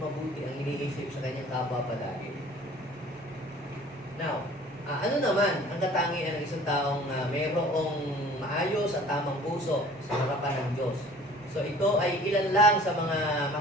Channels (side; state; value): both; normal; correlation 0.49